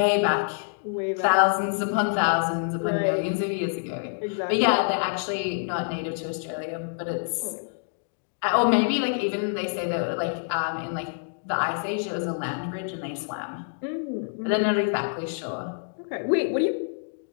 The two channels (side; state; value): right; silent; digital silence